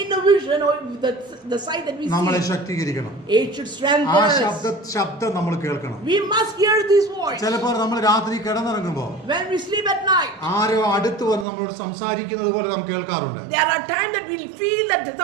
vision or the sight that we നമ്മളെ see, ശക്തീകരിക്കണം. it should strengthen ആ us. ശബ്ദം നമ്മൾ കേൾക്കണം. We must hear this voice. ചിലപ്പോൾ നമ്മൾ രാത്രി കിടന്നിറങ്ങുമ്പോൾ When we sleep at night, ആരോ അടുത്ത് വന്ന് നമ്മളോട് സംസാരിക്കുന്നത് പോലെ നാം കേൾക്കാറുണ്ട്. there are times that we feel that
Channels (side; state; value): left; drops out; at 11.5 s